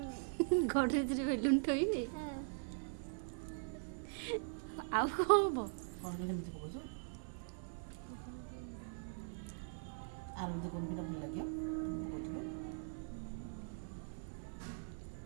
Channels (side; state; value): left; silent; 50 dB below the other